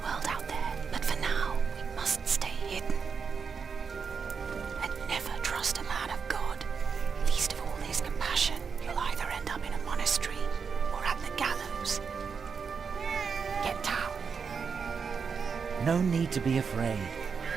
out there, but for now, we must stay hidden. And never trust a man of God. Least of all his compassion, you'll either end up in a monastery or at the gallows. Get down. No need to be afraid.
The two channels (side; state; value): left; quieter; 5.9 dB